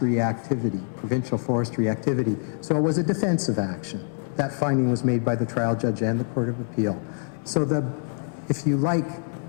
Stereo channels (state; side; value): silent; right; 61 dB below the other